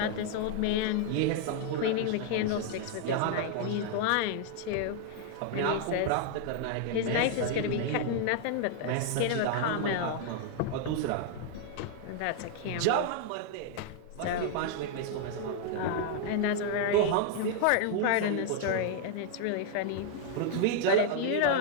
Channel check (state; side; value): different; both; correlation 0.00